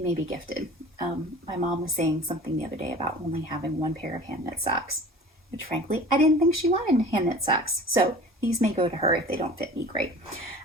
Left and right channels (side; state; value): both; normal; correlation 0.41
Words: be gifted. My mom was saying something the other day about only having 1 pair of hand knit socks, which frankly, I didn't think she wanted hand knit socks. So these may go to her if they don't fit me great.